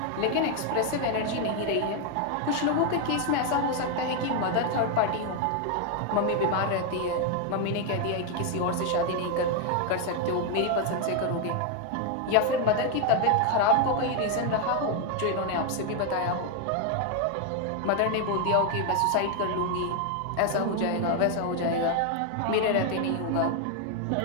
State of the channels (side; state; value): both; different; correlation 0.01